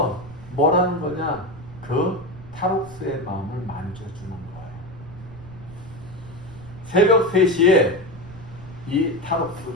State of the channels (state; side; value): noise; right; rumble, 17 dB below the sound